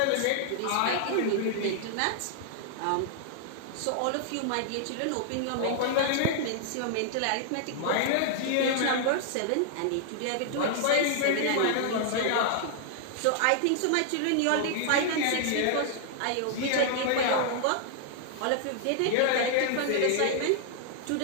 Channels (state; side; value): different; both; correlation -0.01